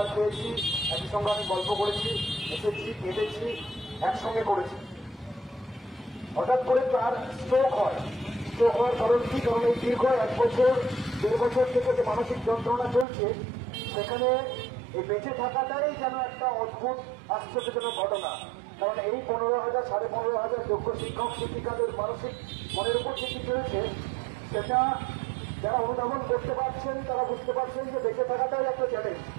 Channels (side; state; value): left; drops out; at 13.1 s